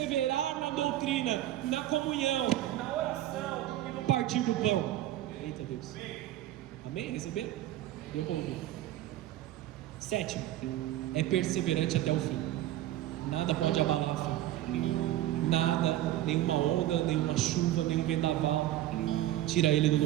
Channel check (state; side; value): quieter; left; 13.9 dB